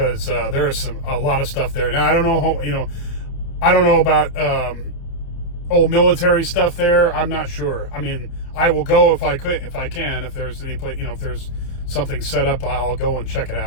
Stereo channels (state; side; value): late; right; 29 ms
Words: there is a lot of stuff there. Now, I don't know I don't know about old military stuff there. I'm not sure. I mean, I will go if I can. If there's any place, if there's something set up, I'll go and check it